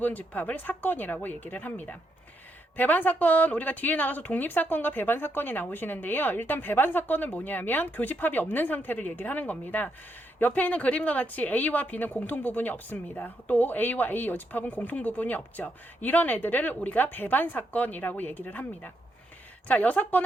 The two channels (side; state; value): both; normal; correlation 0.79